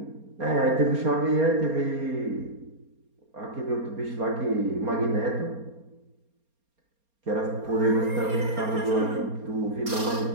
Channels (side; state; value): left; late; 4.3 ms